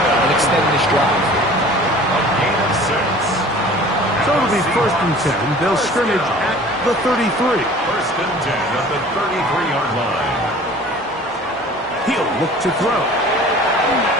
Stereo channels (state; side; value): normal; both; correlation 0.46